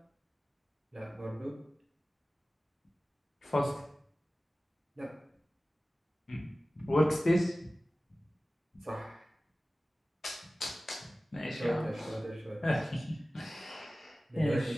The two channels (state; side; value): normal; both; correlation 0.97